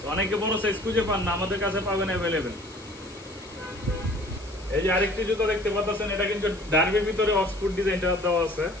অনেকে বড় সাইজ খুঁজে পান না, আমাদের কাছে পাবেন অ্যাভেলেবেল। এই যে আরেকটি জুতা দেখতে পাচ্ছেন, এটা কিন্তু ডার্বির ভিতরে অক্সফোর্ড ডিজাইনটা দেওয়া আছে।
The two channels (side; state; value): left; noise; hiss, 22 dB below the sound